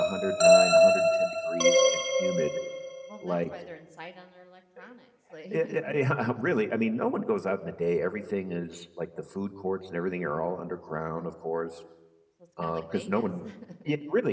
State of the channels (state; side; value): identical; both; correlation 1.00